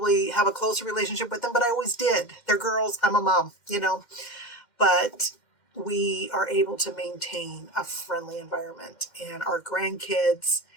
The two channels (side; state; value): right; late; 2.1 ms